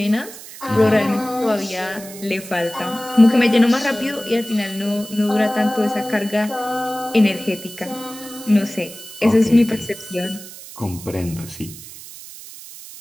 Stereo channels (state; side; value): noise; right; hiss, 15 dB below the sound